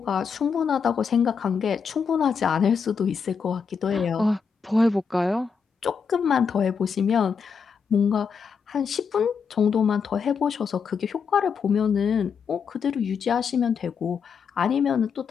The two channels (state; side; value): quieter; right; 6.1 dB